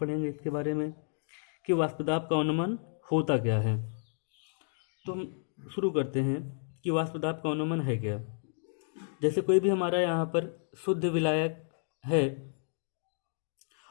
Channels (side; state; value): right; silent; digital silence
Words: इसके बारे में कि वाष्पदाब का अनुमान होता क्या है। तो हम शुरू करते हैं कि वाष्पदाब का अनुमान है क्या। जैसे कोई भी हमारा यहाँ पर शुद्ध विलायक है